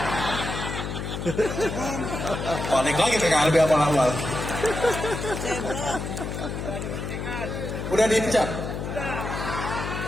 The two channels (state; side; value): noise; left; hum, 5 dB below the sound